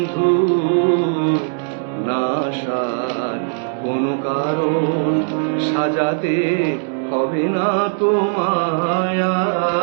নাশার কোনো কারণ সাজাতে হবে না তোমায়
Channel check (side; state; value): left; silent; 66 dB below the other